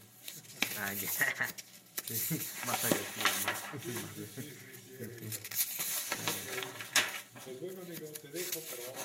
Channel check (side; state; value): both; identical; correlation 1.00